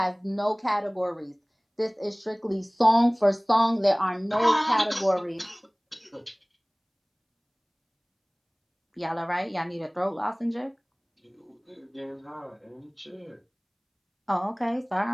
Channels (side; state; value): both; identical; correlation 1.00